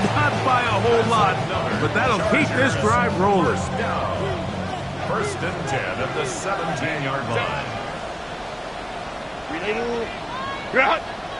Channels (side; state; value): both; identical; correlation 1.00